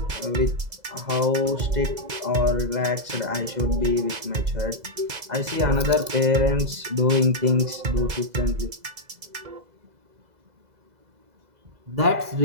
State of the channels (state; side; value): late; left; 2.0 ms